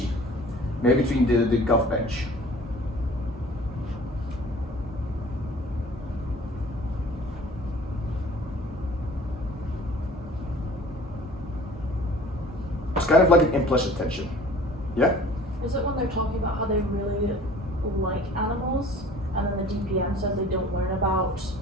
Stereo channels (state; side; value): normal; both; correlation 0.47